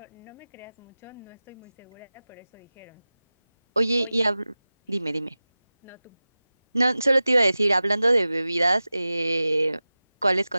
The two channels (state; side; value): inverted; both; correlation -0.96